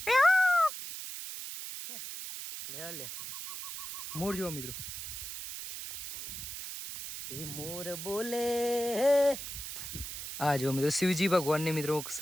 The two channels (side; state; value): right; noise; hiss, 8 dB below the sound